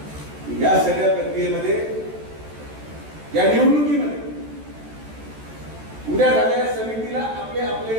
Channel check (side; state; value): left; late; 14 ms